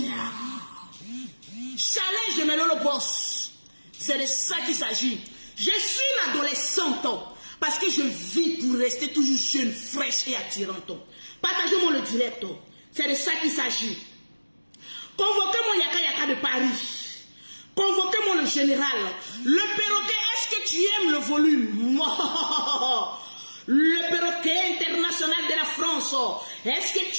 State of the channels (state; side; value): inverted; both; correlation -1.00